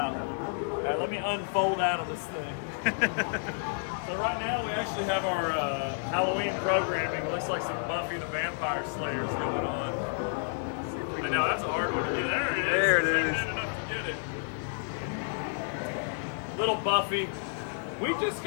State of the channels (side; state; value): right; silent; 58 dB below the other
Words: Right, let me unfold out of this thing. So right now we actually have our Halloween programming. Looks like some Buffy the Vampire Slayers going on. I know that's a hard one to do. There it is. There it is. Good enough to get it. Little Buffy. We just